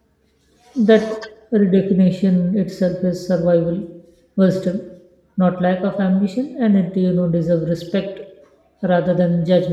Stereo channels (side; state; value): both; identical; correlation 1.00